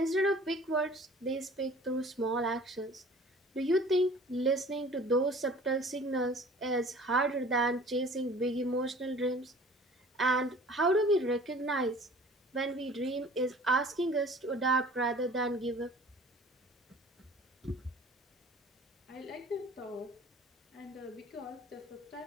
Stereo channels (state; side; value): normal; both; correlation 0.48